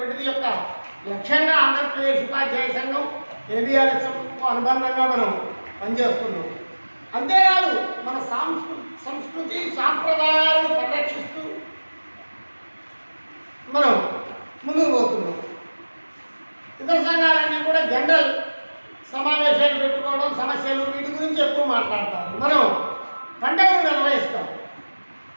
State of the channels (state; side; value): inverted; both; correlation -1.00